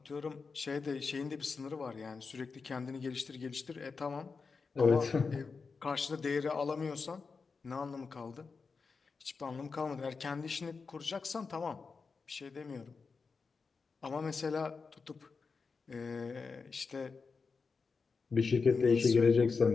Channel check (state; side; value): quieter; right; 4.8 dB